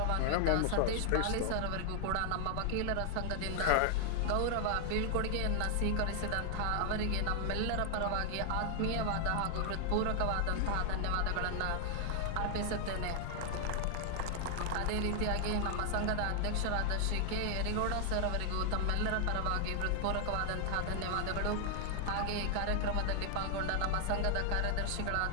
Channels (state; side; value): different; both; correlation 0.00